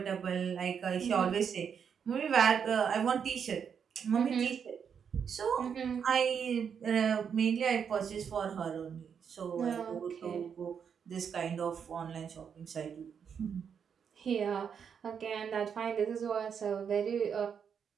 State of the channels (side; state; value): left; quieter; 7.2 dB